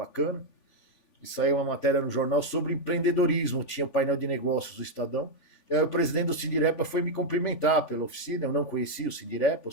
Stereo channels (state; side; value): late; right; 3.5 ms